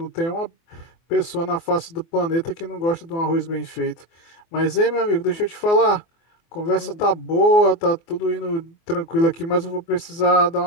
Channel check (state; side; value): late; right; 24 ms